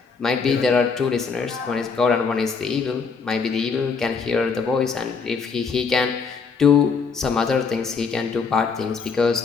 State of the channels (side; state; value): right; quieter; 5.3 dB